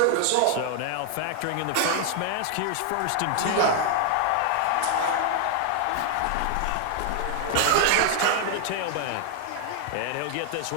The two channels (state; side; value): different; both; correlation 0.00